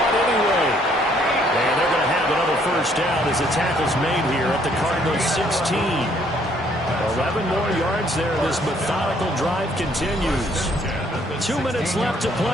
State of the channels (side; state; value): both; normal; correlation 0.65